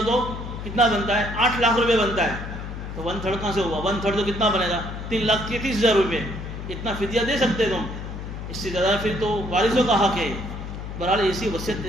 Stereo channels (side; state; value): left; noise; hum, 8 dB below the sound